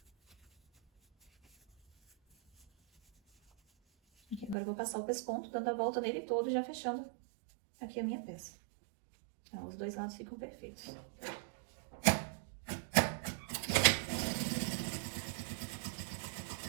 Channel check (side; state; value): left; drops out; at 4.5 s